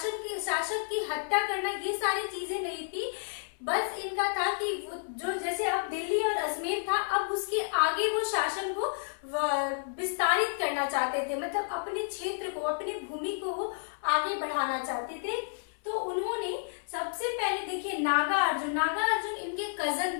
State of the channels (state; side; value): silent; right; 57 dB below the other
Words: की हत्या करना, ये सारी चीजें नहीं थी। बस इनका था कि वो जो जैसे अब दिल्ली और अजमेर था, अब उसके आगे वो शासन को विस्तारित करना चाहते थे, मतलब अपने क्षेत्र को, अपनी भूमि को वो आगे बढ़ाना चाहते थे। तो उन्होंने सबसे पहले देखिए नागा अर्जुन इनके कजन